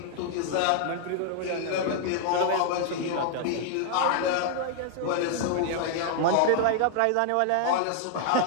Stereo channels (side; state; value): both; different; correlation 0.00